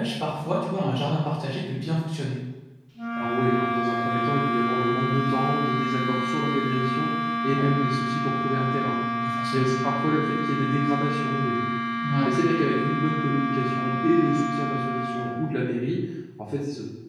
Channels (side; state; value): both; identical; correlation 1.00